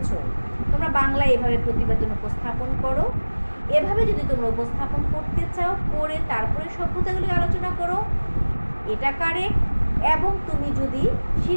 তোমরা বাংলায় এভাবে প্রতিবেদন উপস্থাপন করো। এভাবে যদি তোমরা উপস্থাপন করতে চাও, করে তারপরে সভ্যতাগুলি আলোচনা করো, এটা কারেক্ট। এবং তুমি যদি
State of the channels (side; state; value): both; inverted; correlation -1.00